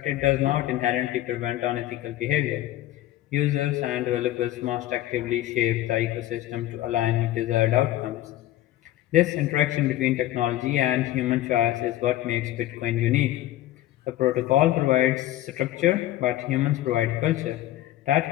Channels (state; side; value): quieter; right; 14.6 dB